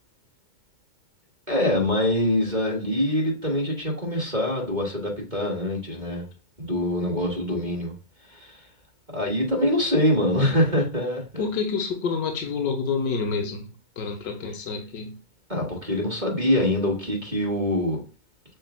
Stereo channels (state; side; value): late; left; 2.2 ms